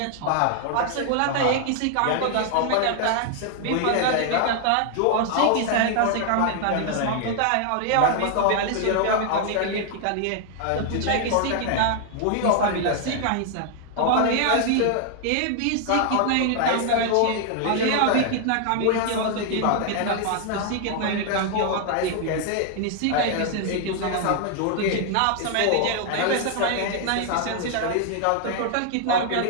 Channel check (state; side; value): different; both; correlation 0.00